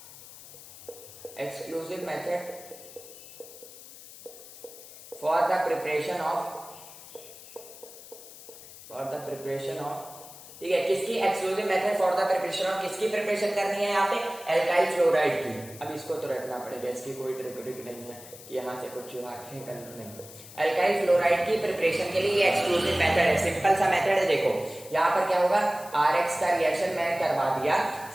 for the preparation of ठीक है, किसकी exclusive method for the preparation of, किसकी प्रिपरेशन करनी है यहाँ पे, एल्काइल फ्लोराइड की। अब इसको तो रखना पड़ेगा, इसकी कोई ट्रिक नहीं है कि यहाँ से कुछ रखें कर नहीं। एल्काइल फ्लोराइड की प्रिपरेशन के लिए ये एक्सक्लूसिव मेथड है, सिंपल सा मेथड है। देखो यहाँ पर क्या होगा, RX का रिएक्शन मैंने करवा दिया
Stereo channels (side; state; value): left; noise; hiss, 17 dB below the sound